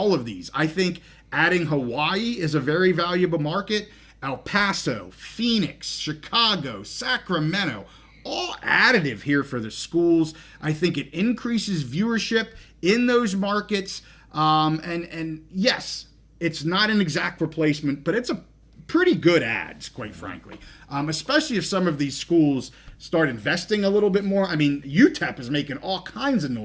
of these. I think adding Hawaii is a very valuable market. El Paso, Phoenix, Chicago, Sacramento, all additive here for the schools. I think it increases viewership in those markets. And yes, it's not an exact replacement, but it's a pretty good ads, quite frankly. Especially if some of these schools start investing a little bit more. I mean, UTEP is making all kinds of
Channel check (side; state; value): both; identical; correlation 1.00